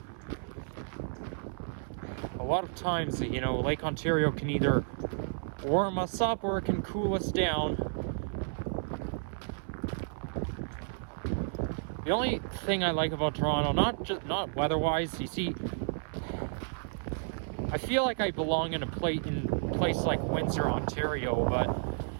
A lot of times, you know, Lake Ontario can either warm us up or it can cool us down. The only thing I like about Toronto, not weather-wise, you see, I feel like I belong in a place like Windsor, Ontario, but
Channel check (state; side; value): silent; left; 56 dB below the other